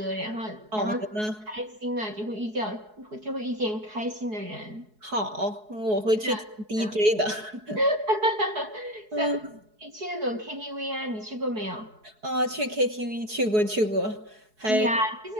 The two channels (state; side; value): late; left; 4.7 ms